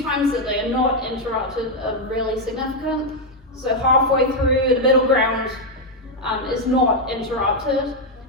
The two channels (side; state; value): both; normal; correlation 0.01